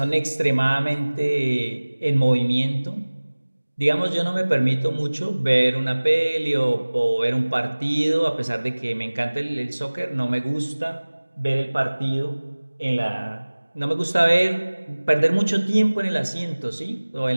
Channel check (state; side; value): inverted; both; correlation -1.00